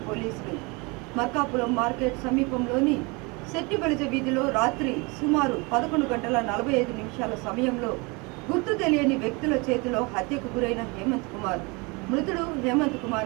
పోలీసులు. మల్కాపురం మార్కెట్ సమీపంలోని శెట్టిబలిజ వీధిలో రాత్రి సుమారు 11:45 సమయంలో గుర్తు తెలియని వ్యక్తుల చేతిలో హత్యకు గురైన హేమంత్ కుమార్. మృతుడు హేమంత్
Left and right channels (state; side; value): quieter; left; 27.9 dB